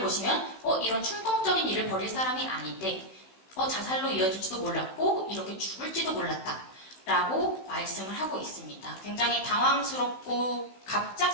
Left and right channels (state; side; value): late; right; 16 ms